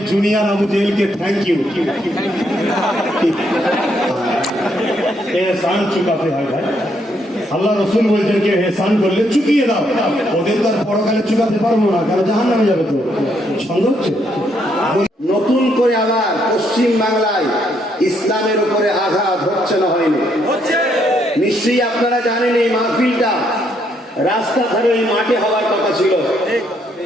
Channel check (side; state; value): both; normal; correlation 0.73